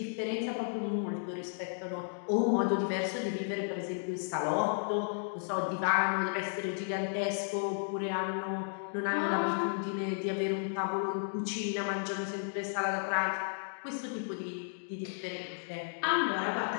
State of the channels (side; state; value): right; silent; digital silence